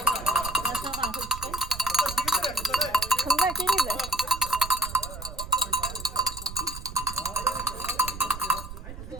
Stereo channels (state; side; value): noise; right; rumble, 11 dB below the sound